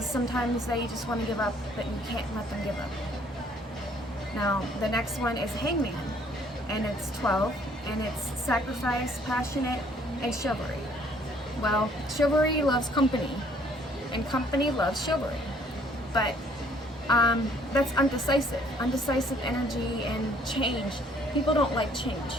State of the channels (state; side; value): normal; both; correlation 0.61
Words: sometimes they just want to give up, but you can't let them give up. Now, the next one is Hangman, and it's 12, and it's sacrifice, passionate, and chivalry. Well, chivalry loves company, and company loves chivalry. But That's undecisive. Undecisive energy and change. People don't like